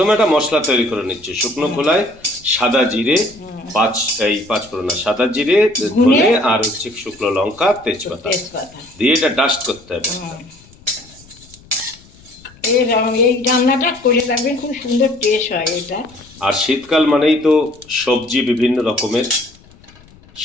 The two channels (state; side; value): noise; left; rumble, 25 dB below the sound